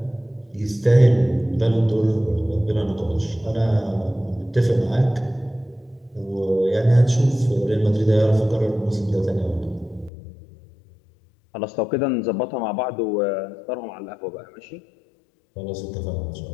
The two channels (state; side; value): drops out; right; at 10.1 s